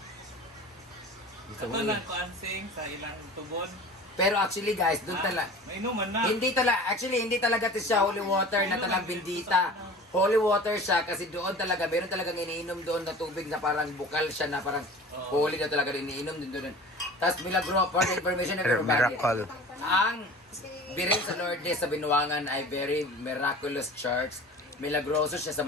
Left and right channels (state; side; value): normal; both; correlation 0.40